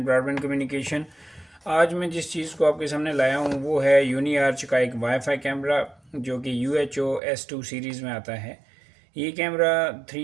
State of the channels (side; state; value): left; drops out; at 7.2 s